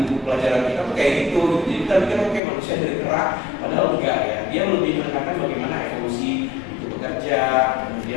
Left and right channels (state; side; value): drops out; right; at 2.4 s